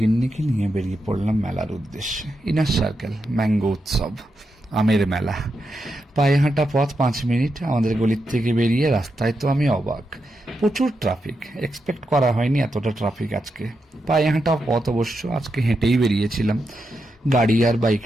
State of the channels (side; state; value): both; normal; correlation 0.86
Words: নিয়ে বেরিয়ে পড়লাম মেলার উদ্দেশ্যে। ইনার সার্কেল ম্যাঙ্গো উৎসব, আমের মেলা। পায়ে হাঁটা পথ 5 মিনিট। আমাদের গলির থেকে বেরিয়ে রাস্তায় তো আমি অবাক, প্রচুর ট্রাফিক। এক্সপেক্ট করা হয়নি এতটা ট্রাফিক আজকে। পায়ে হাঁটা পথ অবশ্য, আজকে হেঁটেই বেরিয়েছিলাম, গাড়ি আর বাইক